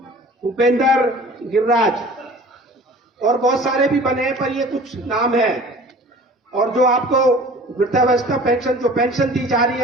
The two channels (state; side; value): normal; both; correlation 0.45